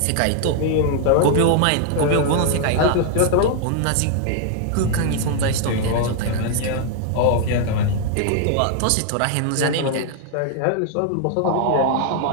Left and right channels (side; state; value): both; different; correlation 0.00